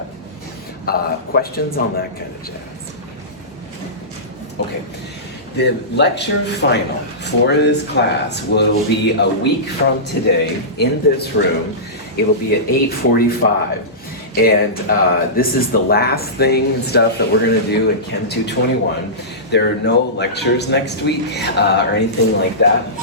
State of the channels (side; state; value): both; normal; correlation -0.19